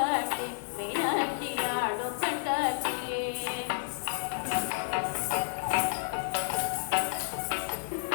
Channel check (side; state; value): right; silent; digital silence